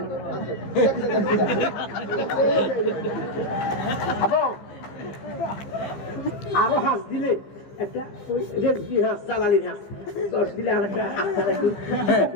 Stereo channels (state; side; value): late; right; 15 ms